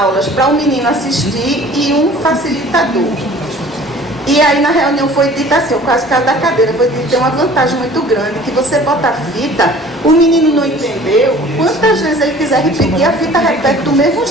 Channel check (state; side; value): normal; both; correlation 0.48